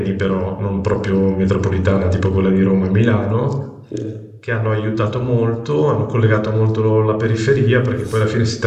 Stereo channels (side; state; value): both; identical; correlation 1.00